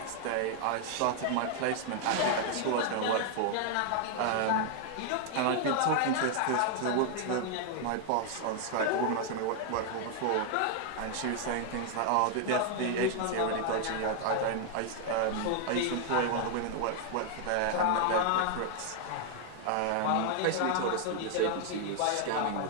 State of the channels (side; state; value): both; different; correlation 0.00